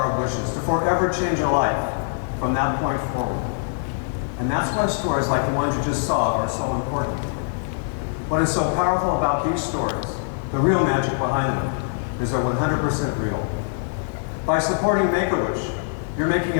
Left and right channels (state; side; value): silent; right; digital silence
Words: of wishes to forever change a life from that point forward. And that's why stories like the ones you just saw are so important. What is so powerful about these stories, the real magic behind them, is they're 100% real. By supporting Make-A-Wish, you're making